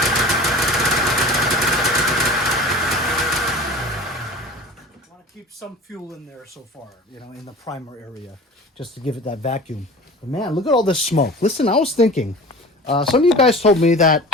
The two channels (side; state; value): both; normal; correlation 0.38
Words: some fuel in there so far, you know, in the primer area, just to give it that vacuum. But man, look at all this smoke. Listen, I was thinking, some of you guys told me that